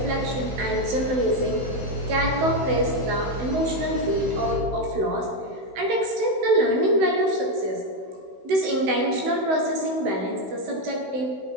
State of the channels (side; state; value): left; late; 16 ms